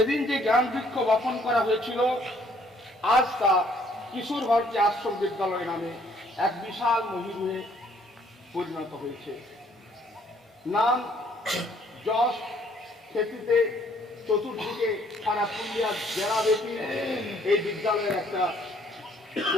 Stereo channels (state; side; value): normal; both; correlation 0.63